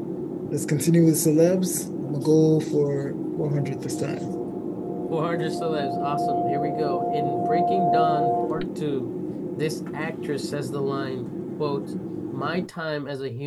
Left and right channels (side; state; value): both; identical; correlation 1.00